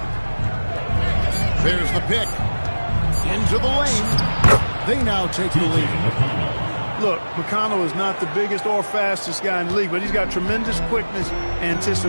There's the pick. Into the lane. They now take the lead. Look, McConnell is not the biggest or fastest guy in the league, but he's got tremendous quickness,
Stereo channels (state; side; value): inverted; both; correlation -1.00